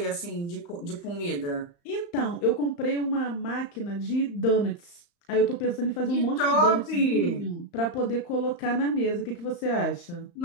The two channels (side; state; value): right; late; 35 ms